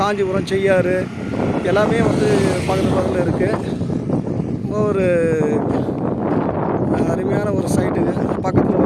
காஞ்சிபுரம், செய்யாறு எல்லாமே வந்து பக்கத்தில் இருக்குது. ஒரு அருமையான ஒரு சைட்டுங்க. பக்கத்தில்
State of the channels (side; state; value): both; identical; correlation 1.00